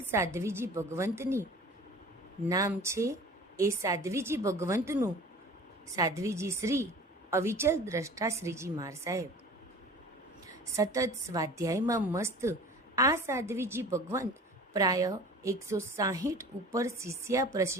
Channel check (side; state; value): both; normal; correlation 0.42